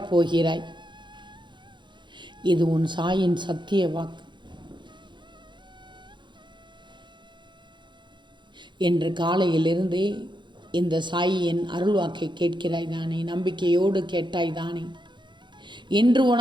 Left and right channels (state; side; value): late; left; 0.23 ms